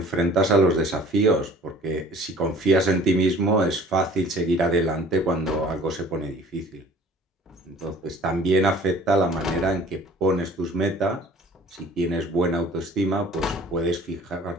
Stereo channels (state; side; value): normal; both; correlation 0.49